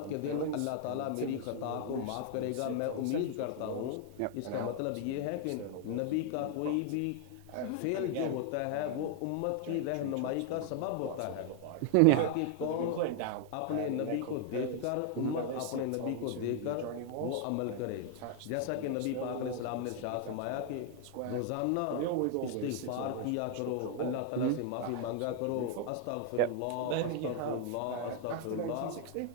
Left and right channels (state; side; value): different; both; correlation 0.00